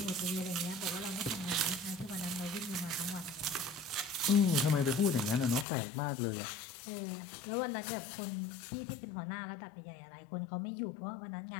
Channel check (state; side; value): drops out; right; at 5.7 s